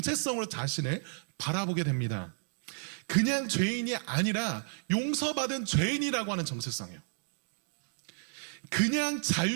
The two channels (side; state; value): left; silent; digital silence